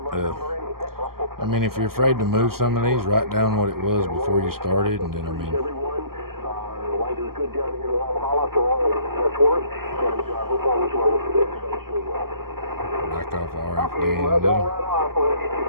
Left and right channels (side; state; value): left; late; 0.93 ms